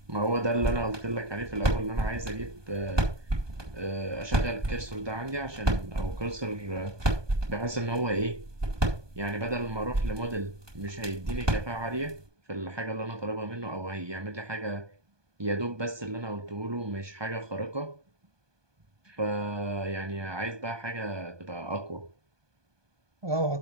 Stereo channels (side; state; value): left; late; 1.2 ms